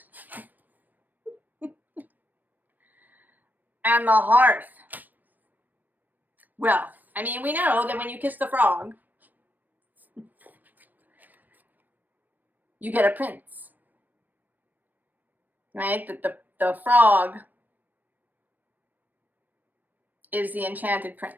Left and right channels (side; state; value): left; late; 0.087 ms